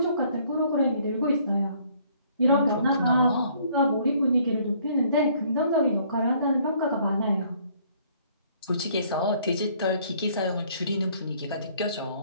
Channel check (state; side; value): inverted; both; correlation -0.62